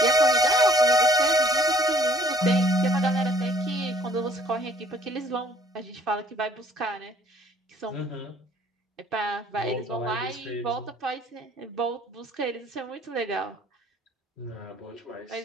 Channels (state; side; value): normal; both; correlation 0.58